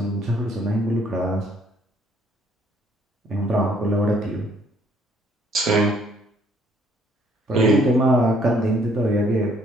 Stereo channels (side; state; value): both; normal; correlation 0.64